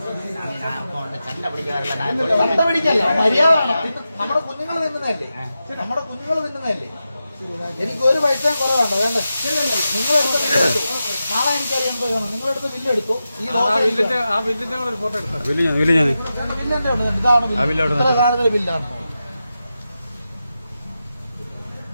ചണ്ട പിടിക്കല്ല, മര്യാദ. നമ്മുടെ കുഞ്ഞുങ്ങൾ തിന്നുന്നതല്ലേ? എനിക്ക് ഒരു പൈസയും കുറവാണ്. വേണ്ട, നിങ്ങളെടുത്ത ബില്ലെടുത്തു. നാളെ എനിക്കറിയാൻ പോയാണ്. നിങ്ങളെടുത്ത് ബില്ലെടുത്തു. ഈ ബില്ലിന്റെ ഇതാണ് ഇത്ര കാണുന്ന ബില്ലാണ്.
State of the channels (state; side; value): inverted; both; correlation -0.91